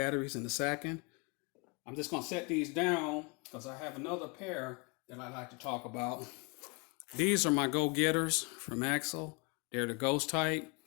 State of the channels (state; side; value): quieter; right; 31.4 dB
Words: in a second. I'm just going to set these down because I have another pair that I like to talk about. These are my go-getters from Axel. They're the ghost type,